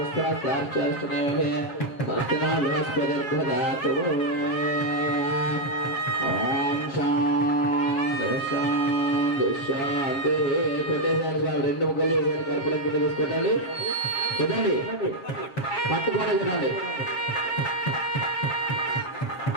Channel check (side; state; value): right; late; 7.2 ms